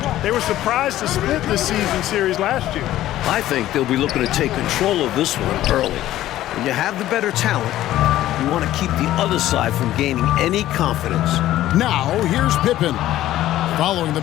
They were surprised to split this season series last year. I think they'll be looking to take control of this one early. When you have the better talent, you want to keep the other side from gaining any confidence. Now, here's Pippen, following the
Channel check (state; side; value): quieter; right; 14.0 dB